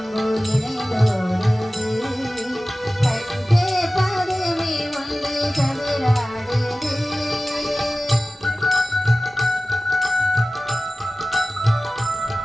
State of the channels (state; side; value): normal; both; correlation 0.96